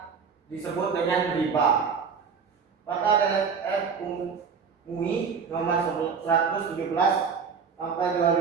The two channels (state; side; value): quieter; left; 5.9 dB